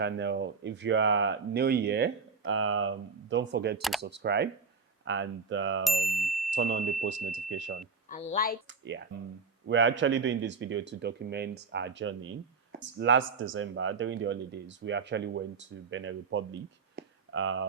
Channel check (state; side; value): quieter; left; 5.0 dB